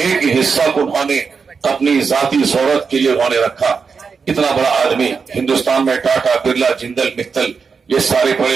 حصہ کو انہوں نے اپنی ذاتی ضرورت کے لیے انہوں نے رکھا۔ اتنا بڑا آدمی ہندوستان میں ٹاٹا برلا جندل متل یہ سارے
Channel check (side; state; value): left; quieter; 5.4 dB